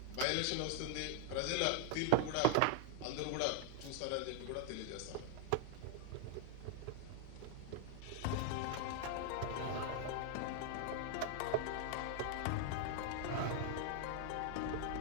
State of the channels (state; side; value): different; both; correlation 0.00